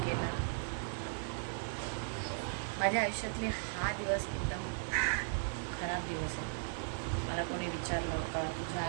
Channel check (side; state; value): left; silent; digital silence